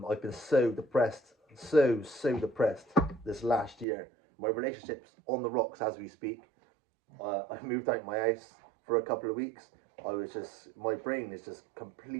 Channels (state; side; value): drops out; left; at 3.9 s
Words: been so depressed, so depressed this last year. My relationship's on the rocks as we speak. I moved out my house for a couple of weeks. My brain is just